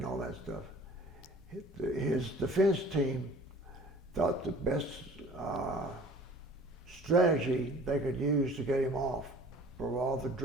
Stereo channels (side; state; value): both; normal; correlation 0.48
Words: all that stuff. His defense team thought the best strategy they could use to get him off for all the